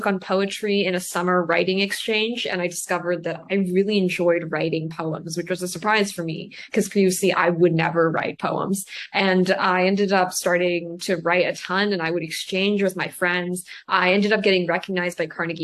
poetry in a summer writing exchange, and I discovered that I really enjoyed writing poems, which was a surprise for me because previously I would never write poems. And I ended up starting to write a ton, and I would exchange with my friends. I ended up getting recognized by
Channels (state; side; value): identical; both; correlation 1.00